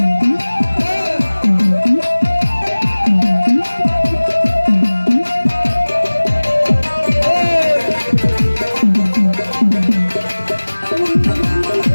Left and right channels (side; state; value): both; inverted; correlation -1.00